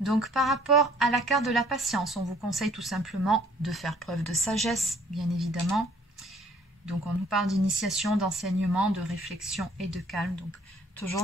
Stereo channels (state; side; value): normal; both; correlation 0.60